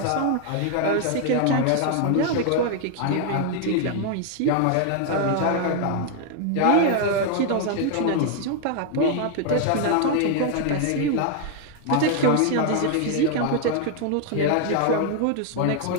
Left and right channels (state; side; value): different; both; correlation 0.00